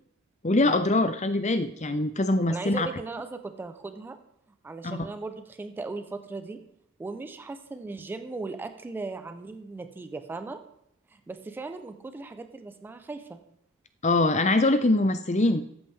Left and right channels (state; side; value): normal; both; correlation 0.48